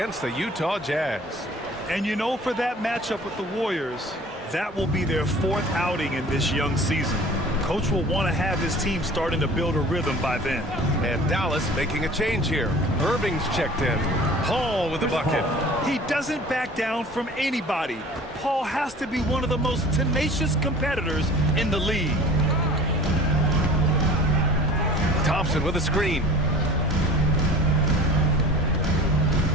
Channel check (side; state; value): both; normal; correlation 0.44